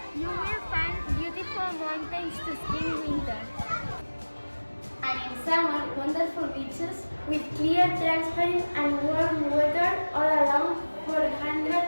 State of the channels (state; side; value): inverted; both; correlation -1.00